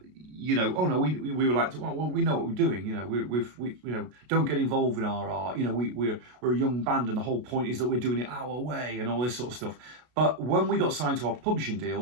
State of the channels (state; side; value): late; left; 33 ms